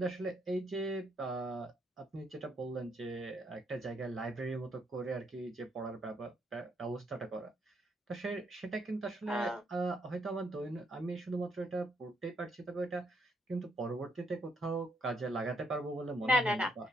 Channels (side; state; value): both; normal; correlation 0.74